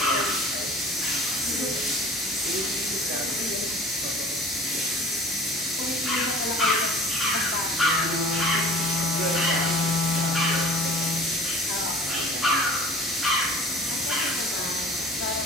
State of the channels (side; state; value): both; normal; correlation 0.44